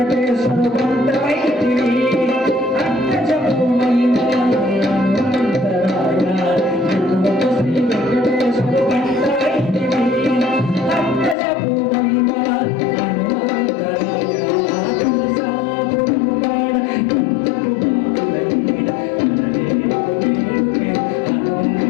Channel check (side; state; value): right; drops out; at 11.4 s